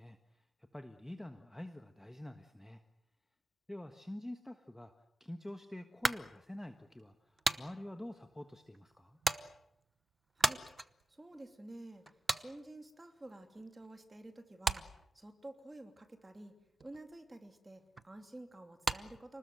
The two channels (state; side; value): normal; both; correlation 0.95